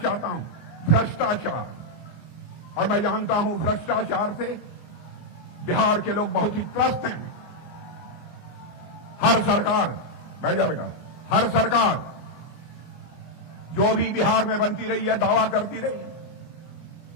हूं, भ्रष्टाचार, और मैं जानता हूं भ्रष्टाचार से बिहार के लोग बहुत ही त्रस्त हैं। हर सरकार, बैठ जा बेटा, हर सरकार जो भी बिहार में बनती रही है दावा करती रही है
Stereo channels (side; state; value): right; late; 25 ms